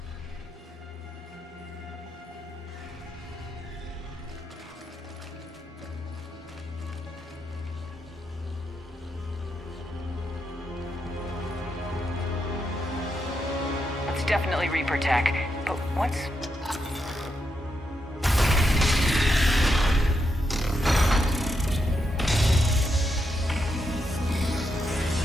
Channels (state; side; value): normal; both; correlation 0.83